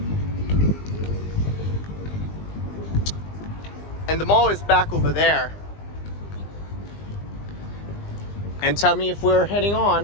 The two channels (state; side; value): late; right; 20 ms